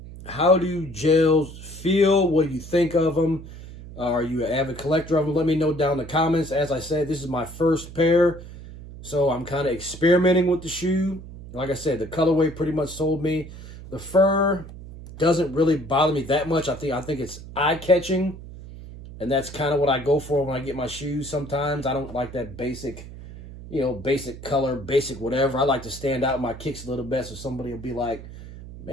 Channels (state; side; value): noise; right; hum, 14 dB below the sound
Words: do gels feel? What do you think of them? Are you an avid collector of them? Let me know down in the comments. As I said, this is my first pair, so I'm kind of experimenting with the shoe. Like I said, the colorway pretty much sold me. The fur doesn't really bother me that much. I think it's eye-catching, and that's kind of what I go for when I get my shoes sometimes. I don't like that basic, basic color, basic whatever. I like to stand out in my kicks a little bit so somebody will be like,